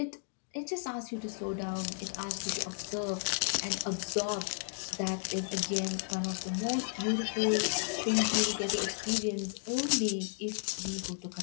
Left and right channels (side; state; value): right; silent; digital silence